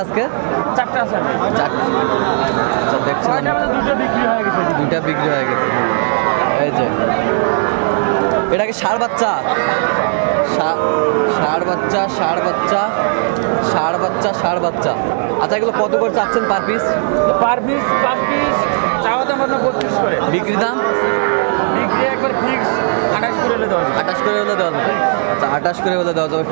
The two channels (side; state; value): left; silent; 62 dB below the other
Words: আজকে? 4টা আছে। আচ্ছা, দেখছিলাম 2টা বিক্রি হয়ে গেছে। 2টা বিক্রি হয়ে গেছে। এই যে এটা কি ষাঁড় বাচ্চা? ষাঁড় বাচ্চা, ষাঁড় বাচ্চা, ষাঁড় বাচ্চা, ষাঁড় বাচ্চা। আচ্ছা, এগুলো কত করে চাচ্ছেন পার পিস? পার পিস চাওয়া দাম আপনার 32 করে। বিক্রি দাম? বিক্রি একবার ফিক্স 28 করে হলে দেওয়া যাবে। 28 করে হলে দেওয়া যাবে। আচ্ছা, 28 করে হলে দেওয়া যাবে